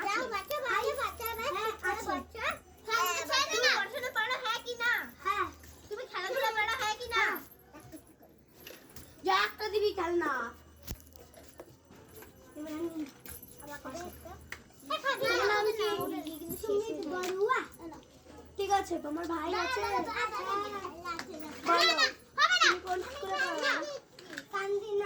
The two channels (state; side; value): identical; both; correlation 1.00